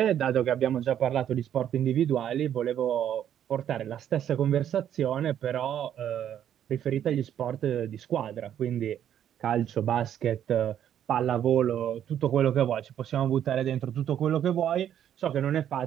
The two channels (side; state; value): left; quieter; 10.1 dB